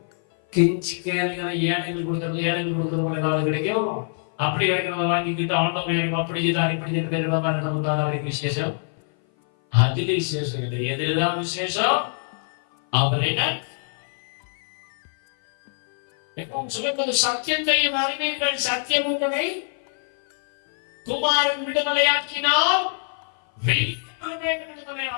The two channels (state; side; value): silent; right; 56 dB below the other